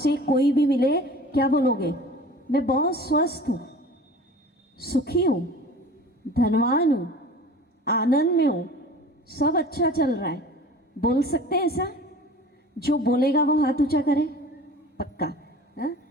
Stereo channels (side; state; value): both; normal; correlation 0.42